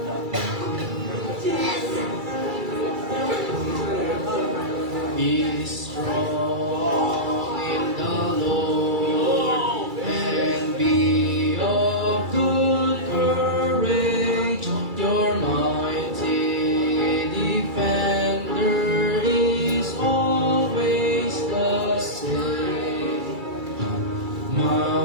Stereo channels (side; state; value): left; late; 2.3 ms